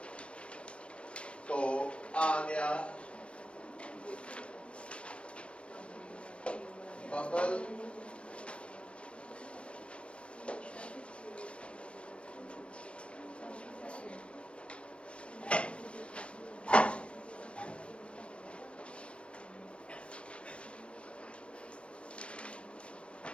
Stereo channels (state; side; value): late; right; 0.059 ms